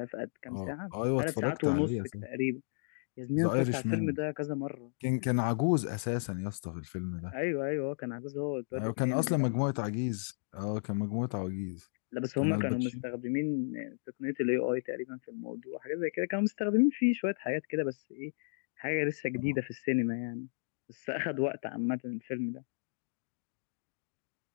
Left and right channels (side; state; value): right; silent; digital silence